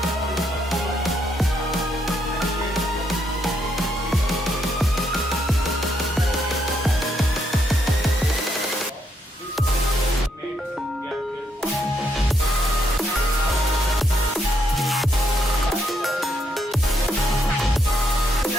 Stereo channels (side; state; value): both; normal; correlation 0.75